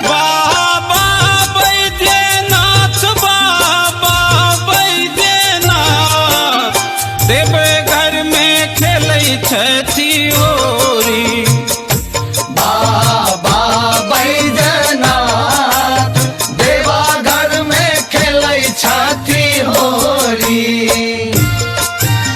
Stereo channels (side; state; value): both; identical; correlation 1.00